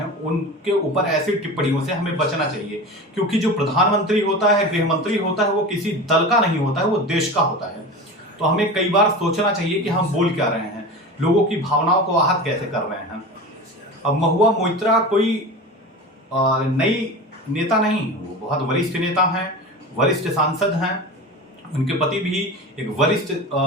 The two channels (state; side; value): normal; both; correlation 0.30